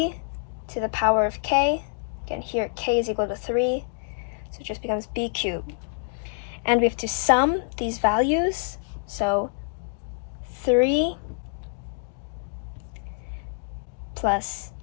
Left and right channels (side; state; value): right; silent; digital silence